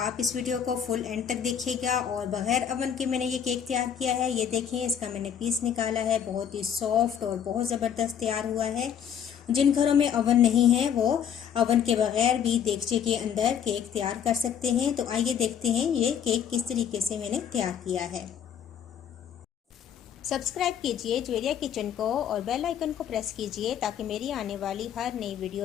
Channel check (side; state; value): right; quieter; 8.6 dB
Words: आप इस वीडियो को फुल एंड तक देखिएगा। और बग़ैर अवन के मैंने ये केक तैयार किया है। ये देखें, इसका मैंने पीस निकाला है, बहुत ही सॉफ्ट और बहुत ज़बरदस्त तैयार हुआ है। जिन घरों में अवन नहीं है वो अवन के बगैर भी देगचे के अंदर केक तैयार कर सकते हैं। तो आइए देखते हैं ये केक किस तरीके से मैंने तैयार किया है। सब्सक्राइब कीजिए ज्वेरिया किचन को और बेल आइकन को प्रेस कीजिए ताकि मेरी आने वाली हर नई